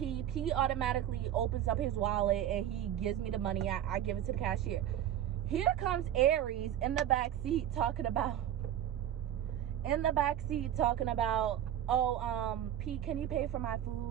P automatically opens up his wallet and he gives me the money. I give it to the cashier. Here comes Aries in the back seat talking about oh, P, can you pay for my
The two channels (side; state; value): left; quieter; 11.0 dB